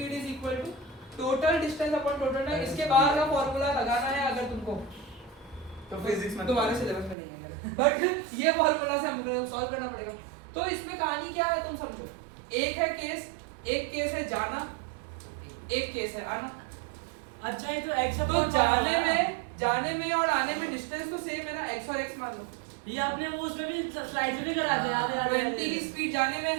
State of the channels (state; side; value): drops out; left; at 7.2 s